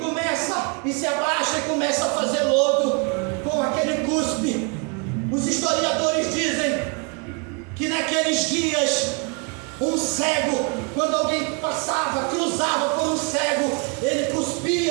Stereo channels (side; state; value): left; quieter; 33.4 dB